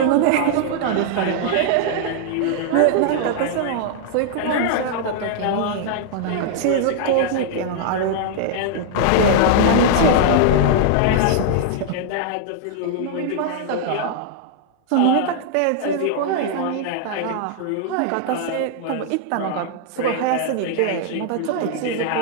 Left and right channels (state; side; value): different; both; correlation -0.01